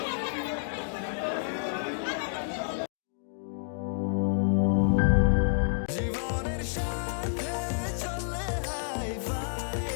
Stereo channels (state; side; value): silent; right; digital silence